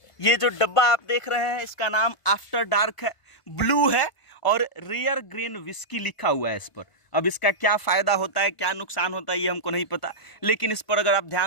ये जो डब्बा आप देख रहे हैं इसका नाम आफ्टर डार्क है, ब्लू है और रेयर ग्रेन विस्की लिखा हुआ है इस पर। अब इसका क्या फ़ायदा होता है, क्या नुकसान होता है, ये हमको नहीं पता, लेकिन इस पर अगर आप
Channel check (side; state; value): right; late; 1.5 ms